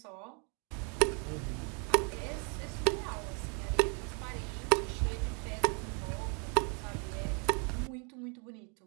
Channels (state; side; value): quieter; left; 36.3 dB